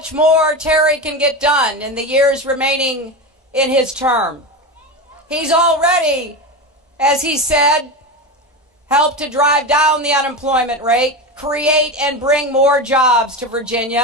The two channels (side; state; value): both; normal; correlation 0.20